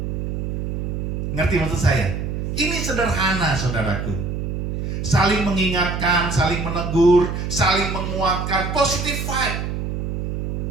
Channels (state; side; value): noise; right; hum, 3 dB below the sound